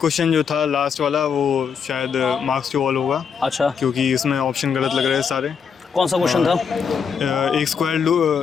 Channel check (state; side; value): quieter; right; 6.6 dB